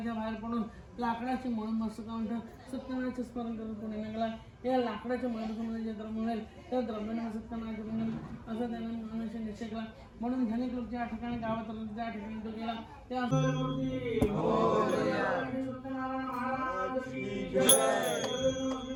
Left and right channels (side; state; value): both; identical; correlation 1.00